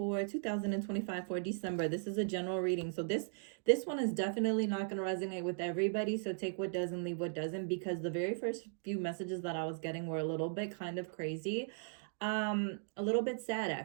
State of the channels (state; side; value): silent; left; digital silence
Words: 2025 for December, this is a general reading. So this one is definitely not going to resonate with everybody. So take what does and leave what doesn't, because the very first few messages that I was getting were a little bit kind of crazy, a little bit sad